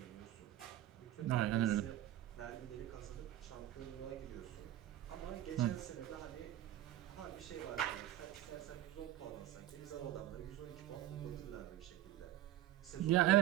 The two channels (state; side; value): quieter; left; 13.7 dB